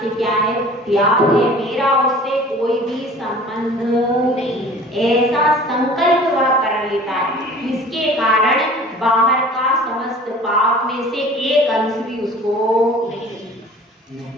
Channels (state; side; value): normal; both; correlation 0.45